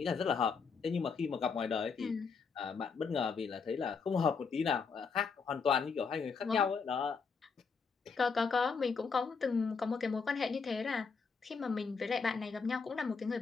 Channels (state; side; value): quieter; right; 5.3 dB